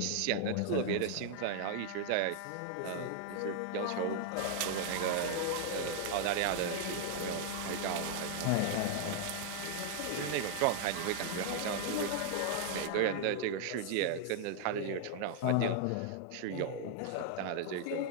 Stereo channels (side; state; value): both; different; correlation 0.00